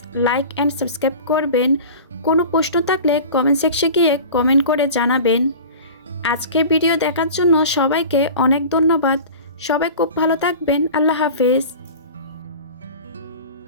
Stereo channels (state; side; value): inverted; both; correlation -0.37